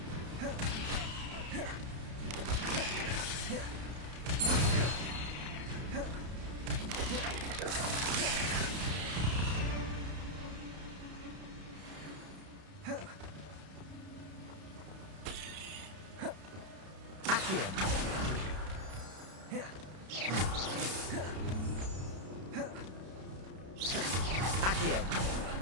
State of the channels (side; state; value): left; late; 32 ms